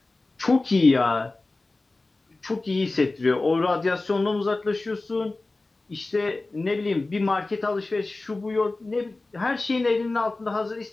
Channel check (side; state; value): right; quieter; 3.2 dB